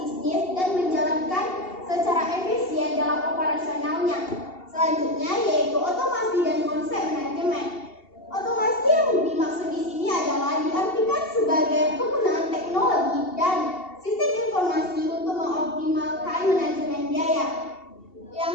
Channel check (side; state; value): right; late; 2.8 ms